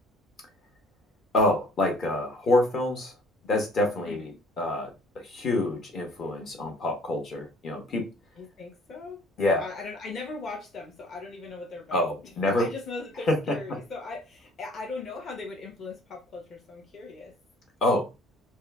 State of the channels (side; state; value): both; normal; correlation 0.55